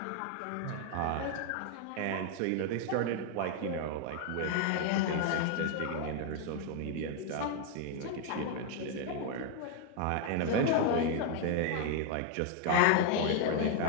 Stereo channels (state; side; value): different; both; correlation 0.00